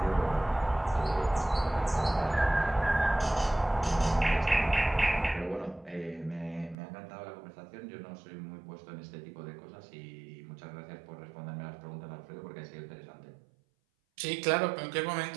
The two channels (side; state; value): left; drops out; at 6.8 s